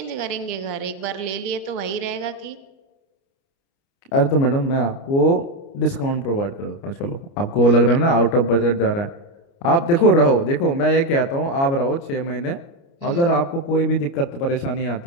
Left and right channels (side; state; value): right; late; 29 ms